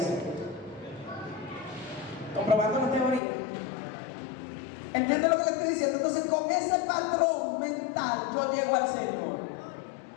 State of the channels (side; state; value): right; drops out; at 3.2 s